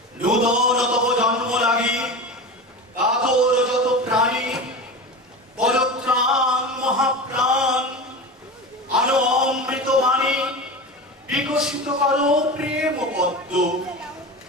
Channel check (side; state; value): both; normal; correlation 0.27